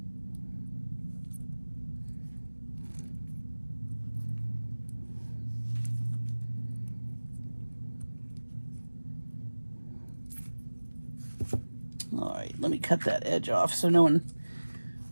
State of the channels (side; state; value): both; inverted; correlation -1.00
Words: All right, let me cut that edge off so no one